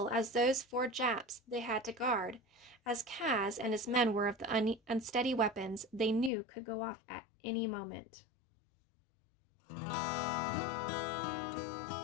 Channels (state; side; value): drops out; right; at 6.3 s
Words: as those 4 Japs they had to guard, as Kaz and his men were of the unsteady weapons they knew could go off at any moment.